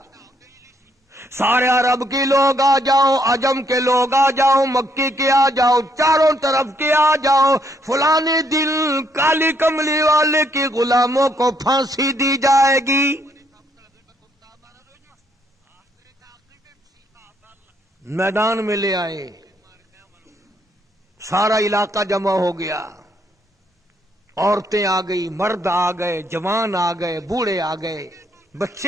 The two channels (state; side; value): normal; both; correlation 0.71